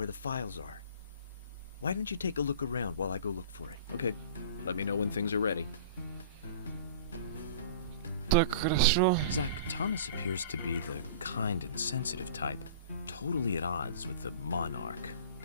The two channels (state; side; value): inverted; both; correlation -0.42